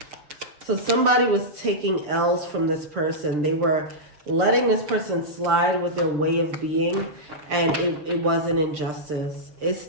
So somebody was taking L's from this person. They were letting this person slide with their way of being, and it was an injustice. It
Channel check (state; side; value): late; left; 6.8 ms